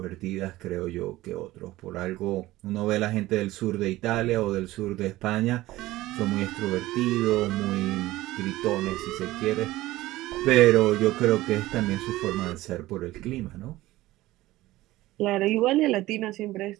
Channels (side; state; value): left; quieter; 17.2 dB